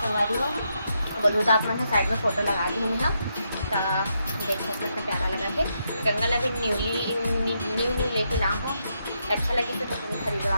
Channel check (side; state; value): both; inverted; correlation -0.80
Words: संगारी हो। बोलूँ तो आप मैं साइड में फ़ोटो लगा दी हूँ ना, तो देख सकते हो प्यारा लगा के। गंगा ला भी न्यू लेके ला हो, अच्छा लगी तो तुम्हें